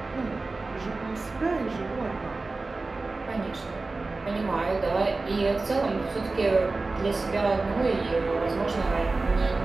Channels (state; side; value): quieter; left; 3.5 dB